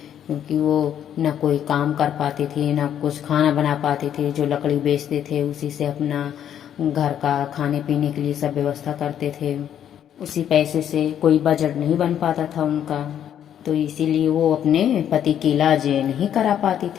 क्योंकि वो ना कोई काम कर पाती थी ना कुछ खाना बना पाती थी। जो लकड़ी बेचते थे उसी से अपना घर का खाने पीने के लिए सब व्यवस्था करते थे। उसी पैसे से कोई बजट नहीं बन पाता था उनका। तो इसीलिए वो अपने पति की इलाज नहीं करा पाती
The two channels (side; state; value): right; quieter; 9.8 dB